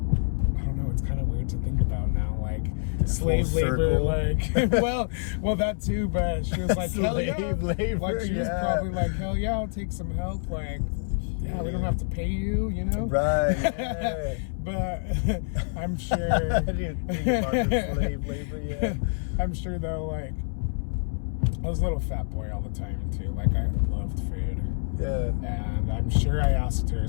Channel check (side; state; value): right; silent; 60 dB below the other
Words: don't know, it's kind of weird to think about now, like slave labor, like well that too, but she was like hell yeah, labor, like she was probably like hell yeah, I'll take some help, like yeah, we don't have to pay you, you know, right? Yeah. But I'm sure I didn't think about the slave labor. Yeah, I'm sure though, like I was a little fat boy all the time too. Like I loved food. Yeah. And I'm sure I asked her